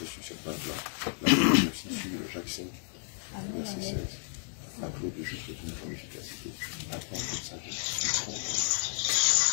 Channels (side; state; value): right; silent; digital silence